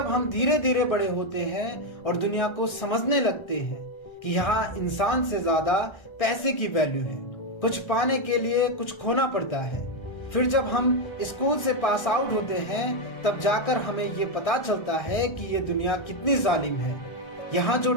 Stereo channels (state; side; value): late; right; 1.3 ms